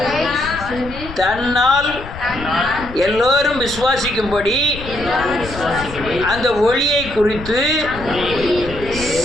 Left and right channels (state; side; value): noise; left; rumble, 12 dB below the sound